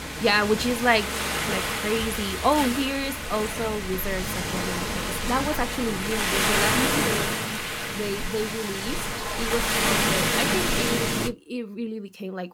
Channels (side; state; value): both; identical; correlation 1.00